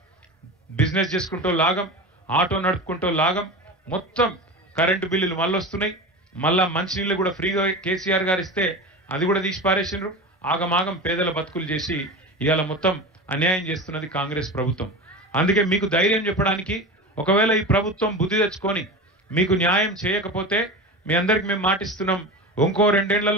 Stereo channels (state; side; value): normal; both; correlation 0.28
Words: బిజినెస్ చేసుకుంటూ లాగం, ఆటో నడుపుకుంటూ లాగం, మొత్తం కరెంటు బిల్లులు మళ్ళీ వస్తున్నాయి. మళ్ళా మంచినీళ్ళు కూడా ఫ్రీగా కేసీఆర్ గారు ఇస్తే అది కూడా తీసి పారేసిండ్రు. ఆగమాగం పేదల బతుకులు చేసి ఇవాళ మొత్తం అన్యాయం చేస్తున్నది కాంగ్రెస్ ప్రభుత్వం. అందుకే మీకు ధైర్యం చెప్పడానికి, ఒకవేళ ఈ ప్రభుత్వం బుద్ధి తెచ్చుకొని మీకు న్యాయం చేయకపోతే మీ అందరికి మేము మాటిస్తున్నాం, ఇంకో 2